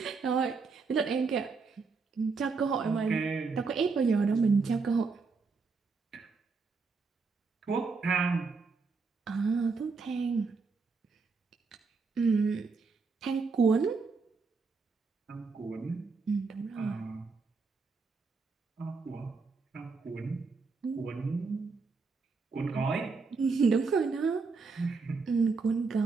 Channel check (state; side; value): quieter; left; 4.5 dB